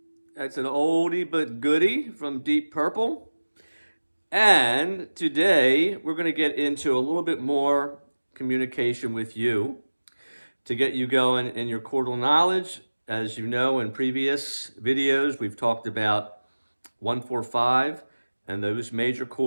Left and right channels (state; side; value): inverted; both; correlation -1.00